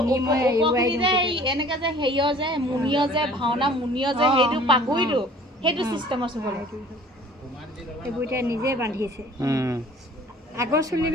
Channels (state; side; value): normal; both; correlation 0.50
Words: ওপৰখিনি যে এনেকে যে হেৰিয় যে মুনিয় যে ভাওনা মুনিয় যে সেইটো পাগুৰিটো সেইটো চিষ্টেমৰ চুবলৈ এইবোৰ এতিয়া নিজে বান্ধিছে আগৰ